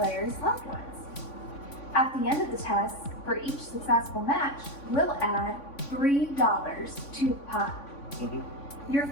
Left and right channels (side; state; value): right; late; 3.5 ms